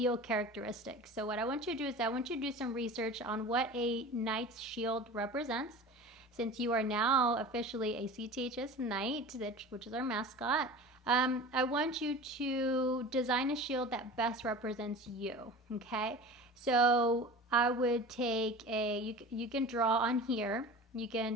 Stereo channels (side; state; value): both; normal; correlation 0.36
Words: characteristics. So what I want you to do is I want you to do some research on what a knight's shield represents. Since you are now officially a CTHS Knight, which is our mascot, I want you to design a shield that best represents you, okay? So I would take you can draw on here. You